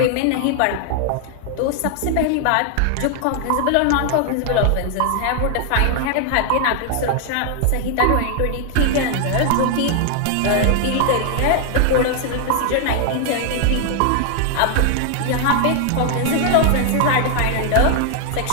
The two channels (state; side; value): different; both; correlation 0.00